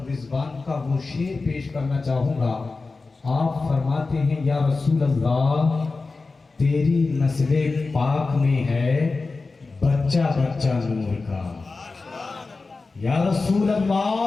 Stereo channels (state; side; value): quieter; right; 3.9 dB